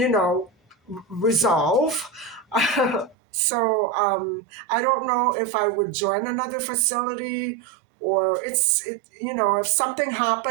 know, resolve. So I don't know if I would join another facility or if something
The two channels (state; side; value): drops out; left; at 3.2 s